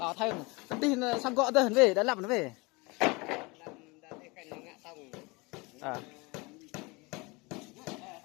thêm tin sang gõ tới về đã làm nó về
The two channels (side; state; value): right; quieter; 26.1 dB